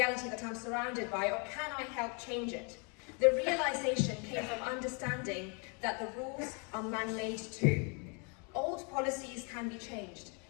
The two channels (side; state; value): right; quieter; 35.2 dB